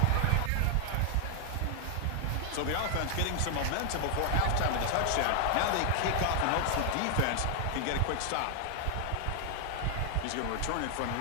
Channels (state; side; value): different; both; correlation 0.00